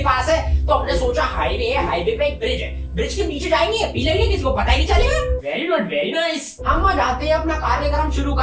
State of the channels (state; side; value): identical; both; correlation 1.00